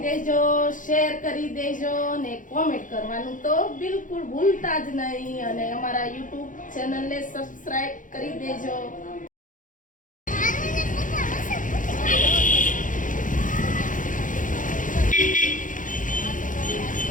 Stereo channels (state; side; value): late; right; 0.38 ms